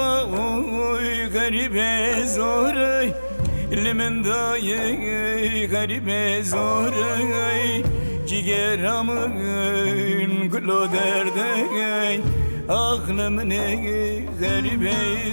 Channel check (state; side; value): inverted; both; correlation -1.00